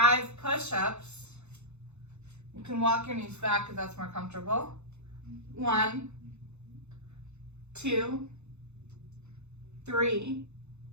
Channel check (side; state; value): left; late; 0.82 ms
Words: push-ups. You can walk your knees back if that's more comfortable. 1, 2, 3,